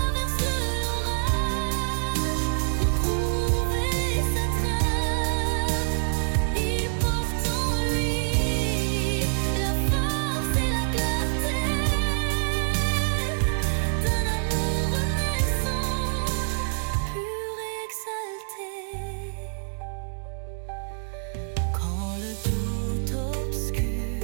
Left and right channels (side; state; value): left; silent; digital silence